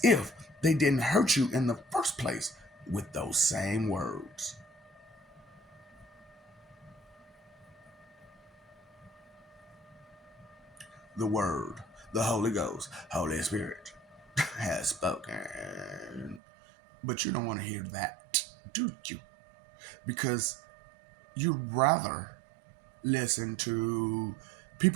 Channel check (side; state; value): left; drops out; at 16.4 s